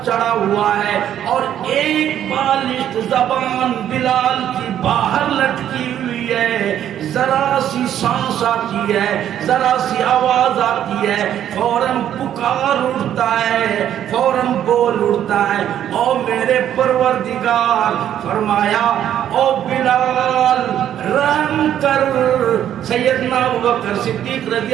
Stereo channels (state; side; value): quieter; left; 10.6 dB